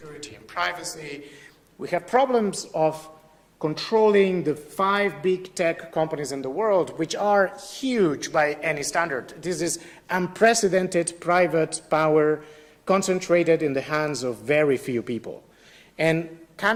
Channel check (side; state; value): both; identical; correlation 1.00